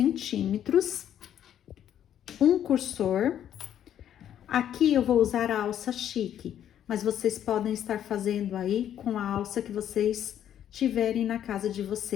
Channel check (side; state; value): right; quieter; 10.3 dB